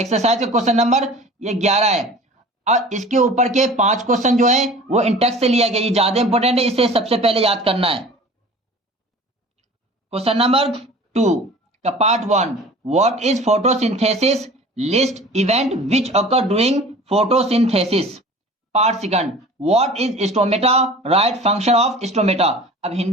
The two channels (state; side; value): normal; both; correlation 0.42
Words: का क्वेश्चन नंबर ये 11 है और इसके ऊपर के 5 क्वेश्चन जो है वो इंटेक्स से लिया गया। ये ज्यादा इंपॉर्टेंट है, इसे सबसे पहले याद करना है। क्वेश्चन नंबर 2 का part 1, what is photosynthesis, list event which occur during photosynthesis. Part second, what is stomata, right function of stomata. अब